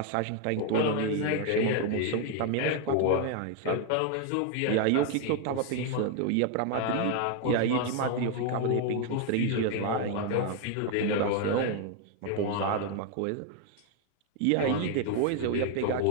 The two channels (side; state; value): both; different; correlation 0.01